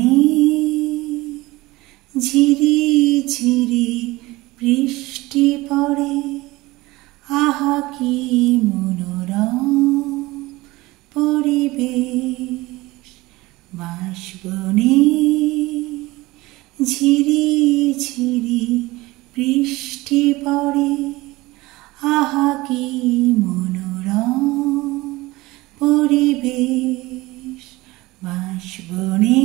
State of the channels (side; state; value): left; quieter; 20.3 dB